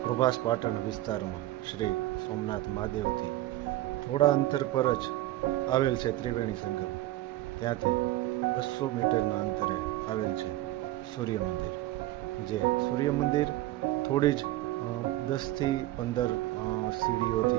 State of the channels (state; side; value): quieter; left; 16.0 dB